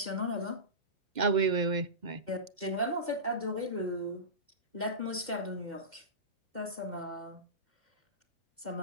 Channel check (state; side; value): late; left; 2.1 ms